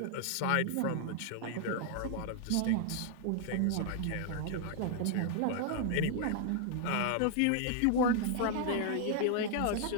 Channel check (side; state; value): both; different; correlation 0.00